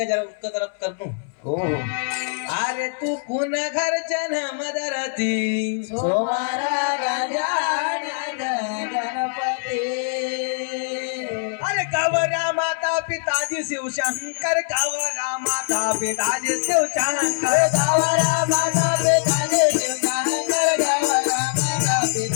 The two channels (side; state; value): right; silent; 64 dB below the other